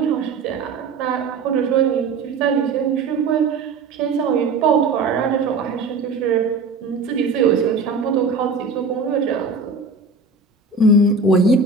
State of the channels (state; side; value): quieter; left; 4.2 dB